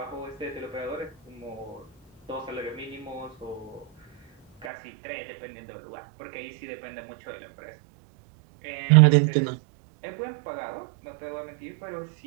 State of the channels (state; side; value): drops out; left; at 4.7 s